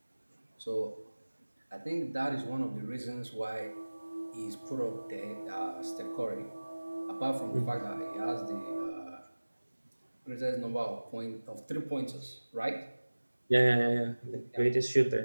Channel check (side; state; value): both; inverted; correlation -1.00